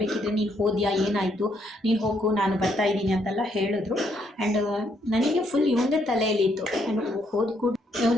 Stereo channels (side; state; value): both; normal; correlation 0.73